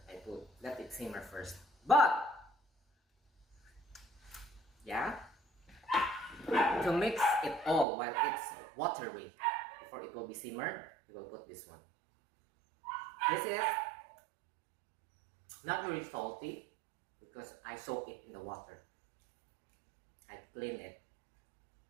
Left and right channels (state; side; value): drops out; left; at 7.9 s